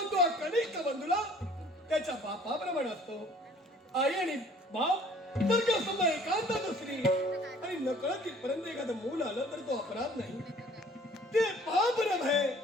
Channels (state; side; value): normal; both; correlation 0.54